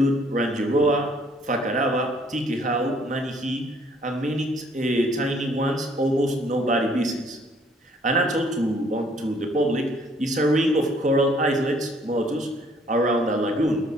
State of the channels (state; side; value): normal; both; correlation 0.62